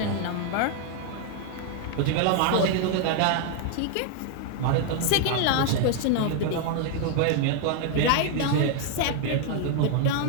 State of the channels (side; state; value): both; different; correlation 0.00